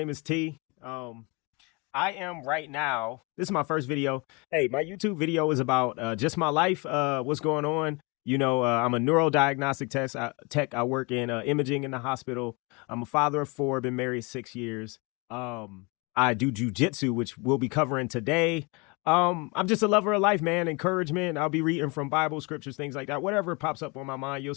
is T. I am right now. This is my first video. Hey, my YouTube video is about just my life. What's going on? I'm a neurodiagnostic tech. I work in imaging in the hospital. I'm a father of four. Been married 6 years. I do jujitsu, which we'll be covering today. I'm just a lover of life, man. Encouragement. I'll be reading from Bible scriptures, things like that. Whatever pops up on my mind. You'll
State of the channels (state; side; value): quieter; right; 29.1 dB